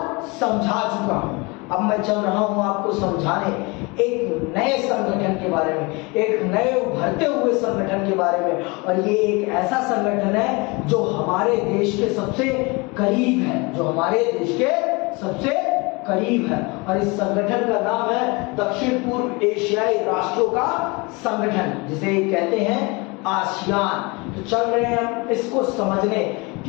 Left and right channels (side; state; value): right; quieter; 26.8 dB